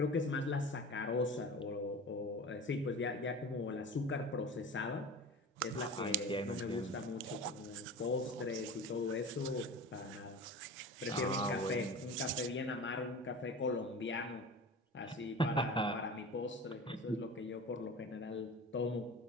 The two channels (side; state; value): both; normal; correlation 0.34